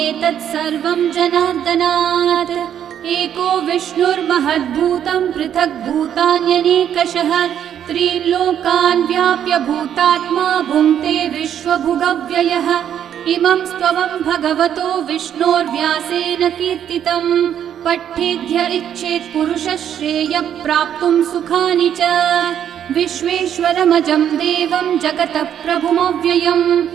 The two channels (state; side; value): quieter; left; 9.6 dB